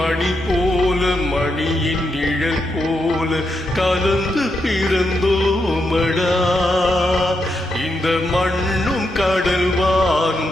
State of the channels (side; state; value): right; noise; hum, 19 dB below the sound